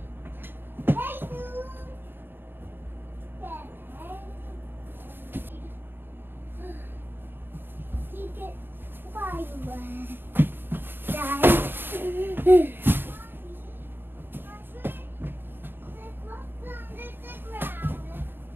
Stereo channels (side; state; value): left; late; 0.098 ms